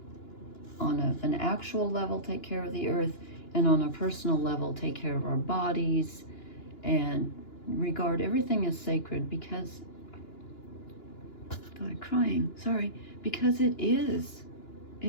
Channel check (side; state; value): right; late; 2.9 ms